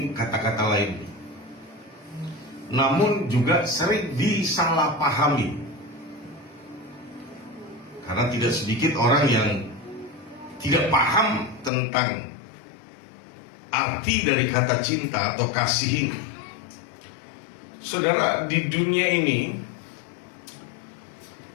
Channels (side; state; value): right; drops out; at 11.7 s